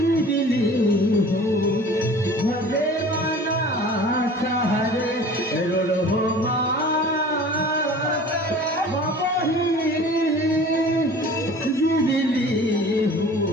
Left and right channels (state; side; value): normal; both; correlation 0.43